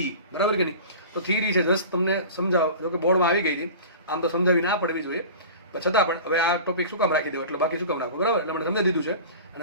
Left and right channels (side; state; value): both; inverted; correlation -0.37